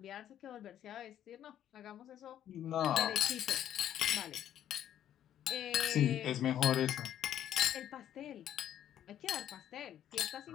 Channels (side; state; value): right; quieter; 10.9 dB